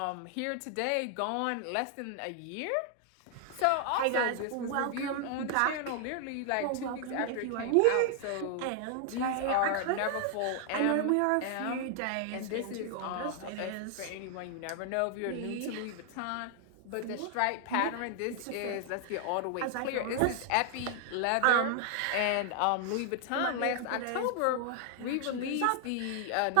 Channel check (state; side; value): different; both; correlation 0.00